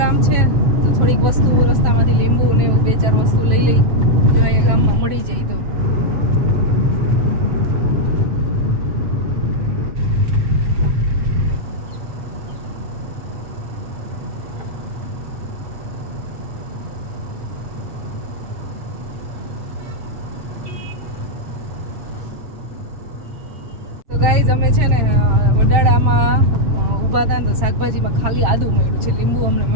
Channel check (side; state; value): left; late; 7.3 ms